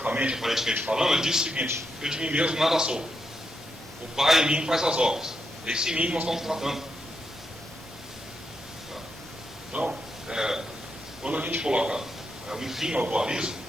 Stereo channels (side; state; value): both; normal; correlation 0.83